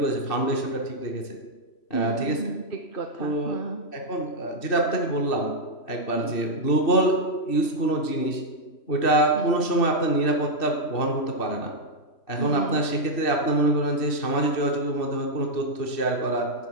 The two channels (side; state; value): right; late; 3.1 ms